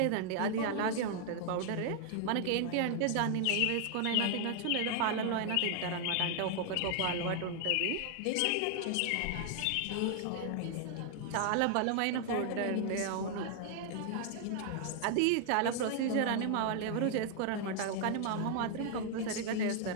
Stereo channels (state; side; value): different; both; correlation 0.00